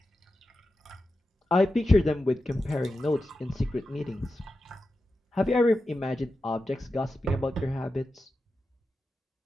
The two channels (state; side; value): normal; both; correlation 0.91